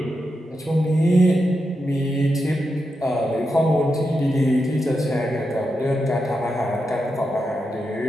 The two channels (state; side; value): normal; both; correlation 0.87